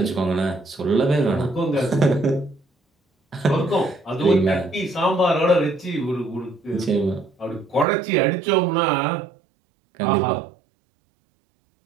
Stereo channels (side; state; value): left; drops out; at 7.9 s